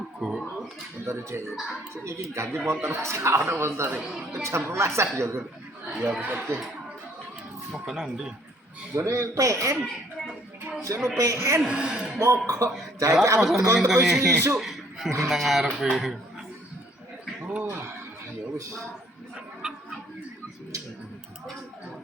Motor cek. Ini ganti motor sekarang motor. Jam 12 ya kan. Ya oke. Mau ke nanti. Jone PN. Seno PN. Mogok. Jadi Apa aku sama teko ini? isu. Nang ngarep. Oh, ya wis.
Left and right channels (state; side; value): normal; both; correlation 0.61